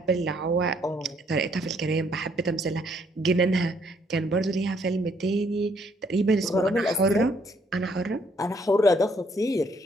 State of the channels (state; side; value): normal; both; correlation 0.68